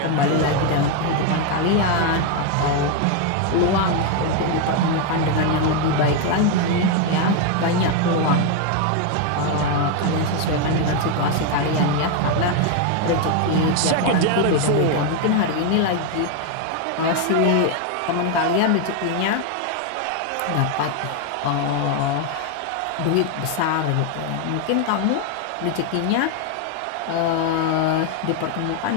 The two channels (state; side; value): different; both; correlation 0.01